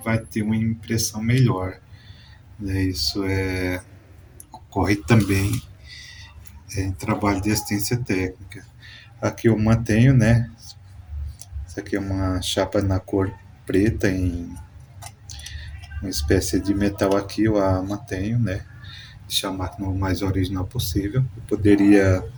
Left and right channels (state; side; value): identical; both; correlation 1.00